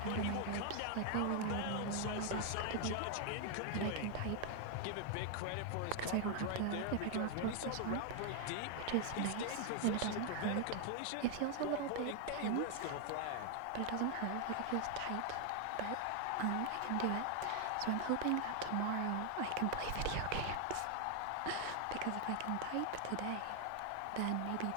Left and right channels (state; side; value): different; both; correlation 0.00